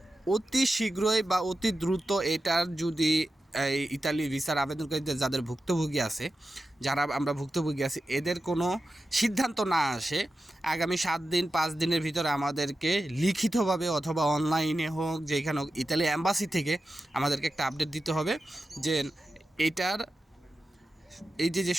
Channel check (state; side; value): normal; both; correlation 0.91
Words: অতি শীঘ্রই বা অতি দ্রুত এটার যদি এই ইতালি ভিসার আবেদনকারীদের যাদের ভুক্তভোগী আছে, যারা আমরা ভুক্তভোগী আছি, এদের কোনো সিদ্ধান্ত না আসে আগামী 7 দিন 5 দিনের ভিতরে আমাদেরকে লিখিতভাবে অথবা অনলাইনে হোক, যেখানে হোক, ইতালি অ্যাম্বাসি থেকে আমাদেরকে একটা আপডেট দিতে হবে যে এটার এই যে